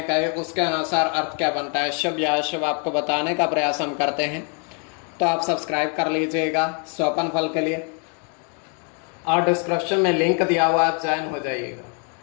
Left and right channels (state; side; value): quieter; right; 39.9 dB